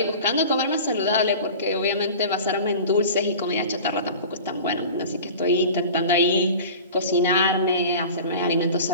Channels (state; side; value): inverted; both; correlation -0.37